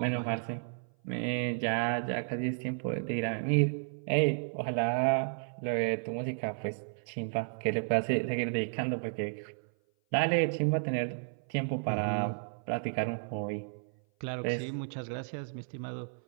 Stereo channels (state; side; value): silent; left; 56 dB below the other